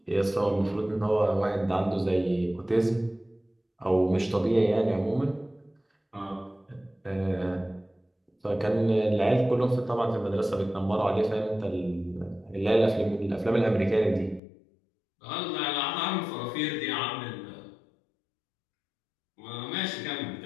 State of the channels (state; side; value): drops out; right; at 14.4 s